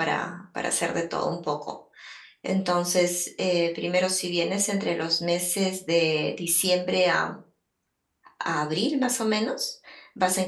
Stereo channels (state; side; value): identical; both; correlation 1.00